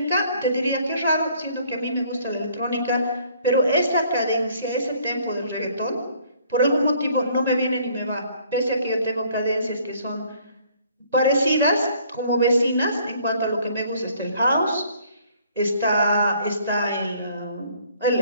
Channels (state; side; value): inverted; both; correlation -0.60